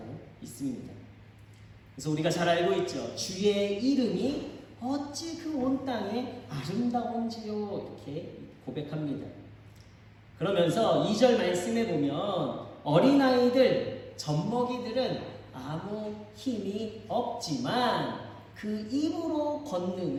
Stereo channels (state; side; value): identical; both; correlation 1.00